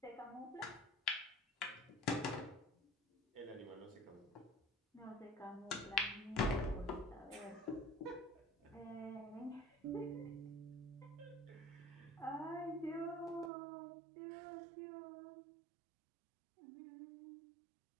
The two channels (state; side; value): drops out; left; at 13.5 s